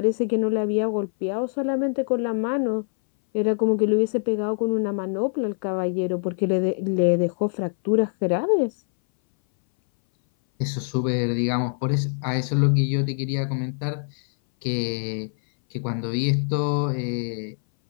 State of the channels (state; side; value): silent; right; 60 dB below the other